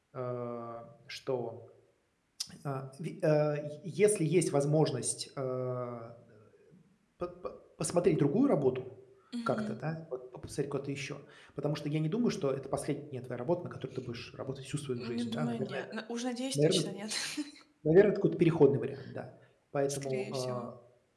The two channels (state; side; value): identical; both; correlation 1.00